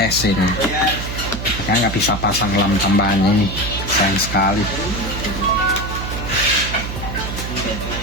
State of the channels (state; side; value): noise; right; hum, 6 dB below the sound